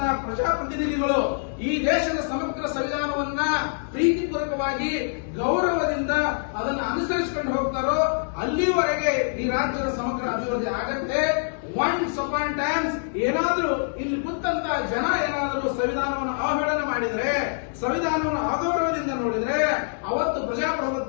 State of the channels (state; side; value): silent; right; digital silence